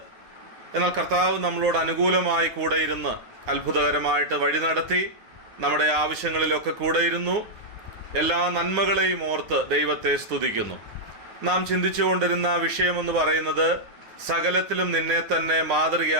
എന്നാൽ കർത്താവ് നമ്മളോട് അനുകൂലമായി കൂടെ ഇരുന്ന് അത്ഭുതകരമായിട്ട് വഴി നടത്തി നമ്മുടെ ആവശ്യങ്ങളിലൊക്കെ കൂടെ ഇരുന്നു. എല്ലാ നന്മകളെയും ഓർത്ത് ദൈവത്തെ സ്തുതിക്കുന്നു. നാം ചിന്തിച്ചുകൊണ്ടിരുന്ന വിഷയമെന്ന് പറയുന്നത് സകലത്തിലും നിന്നെ തന്നെ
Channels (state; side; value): late; left; 9.6 ms